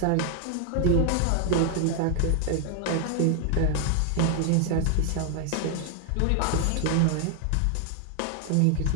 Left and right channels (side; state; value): both; different; correlation 0.00